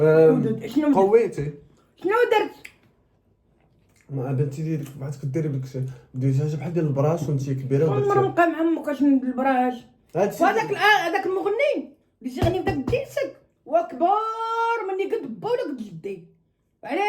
شنو درت؟ قويتي شنو درت؟ ما بنتي ديالك بغات كديري بداكشي ديجا بحال ديال البراش وانت كبيره عمر بقى مع عمك اش البراش هادشي هذاك المغني اللي تيغني بداك الديسك وكبار مني قد با ولا قد جدي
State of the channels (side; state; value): both; identical; correlation 1.00